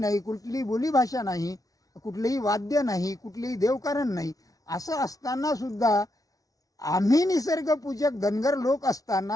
कुठलीही बोलीभाषा नाही, कुठलेही वाद्य नाही, कुठलेही देवकारण नाही. असं असताना सुद्धा आम्ही निसर्गपूजक धनगर लोक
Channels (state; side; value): late; right; 0.18 ms